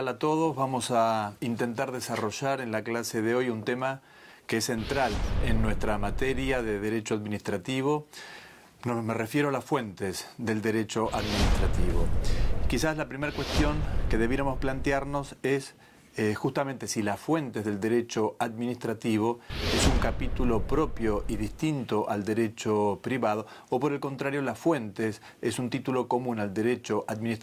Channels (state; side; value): identical; both; correlation 1.00